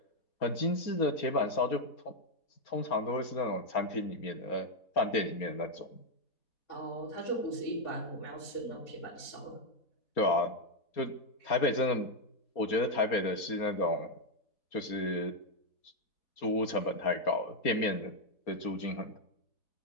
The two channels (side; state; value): right; late; 4.3 ms